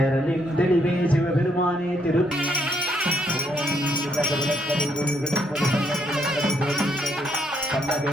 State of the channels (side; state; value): both; normal; correlation 0.73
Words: தெளிவே சிவபெருமானே திரு